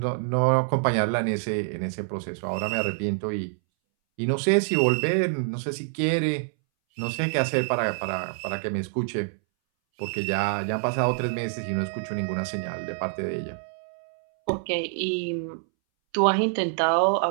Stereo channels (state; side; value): silent; left; 61 dB below the other